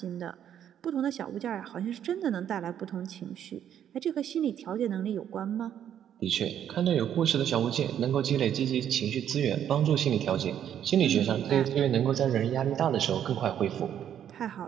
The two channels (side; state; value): left; quieter; 9.8 dB